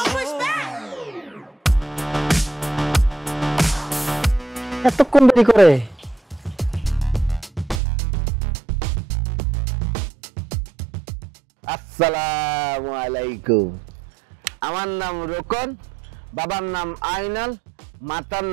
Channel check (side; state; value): left; drops out; at 7.8 s